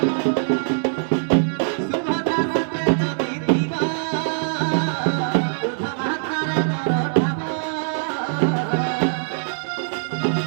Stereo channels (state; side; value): silent; left; digital silence